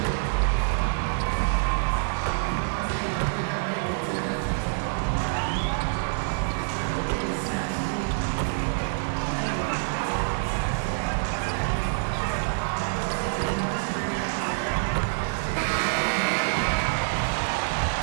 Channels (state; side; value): silent; left; 61 dB below the other